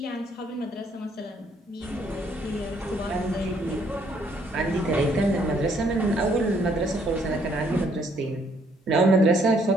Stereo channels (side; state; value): both; normal; correlation 0.67